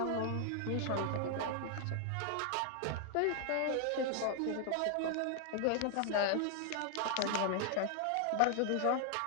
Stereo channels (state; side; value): different; both; correlation 0.00